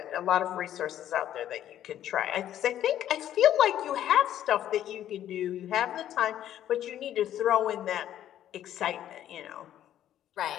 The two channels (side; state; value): right; quieter; 11.5 dB